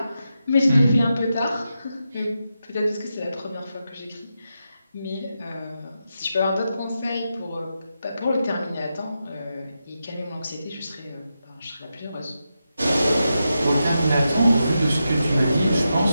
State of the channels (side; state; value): both; inverted; correlation -0.88